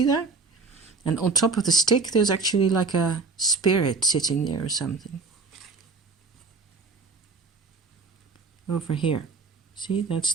that? And on top of the stick, there's actually like a spirit sitting there or something. Over here. See, that's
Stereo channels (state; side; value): quieter; left; 4.3 dB